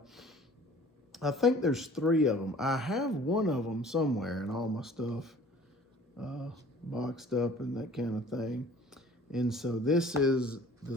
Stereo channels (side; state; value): both; normal; correlation 0.49